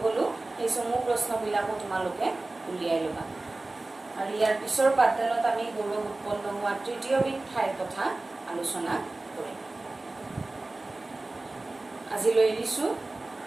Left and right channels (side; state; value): left; quieter; 3.0 dB